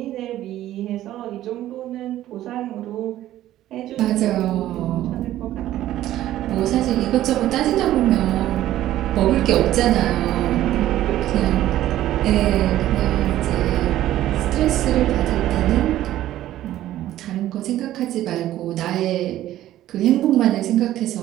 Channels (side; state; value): left; quieter; 13.7 dB